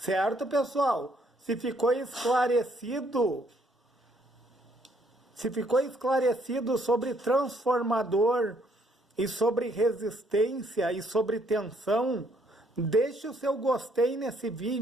pessoal? Se ficou esclarecido sobre transformador e sobre resistência e sobre tensão, deixe o seu gostei nesse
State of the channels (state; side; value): normal; both; correlation 0.68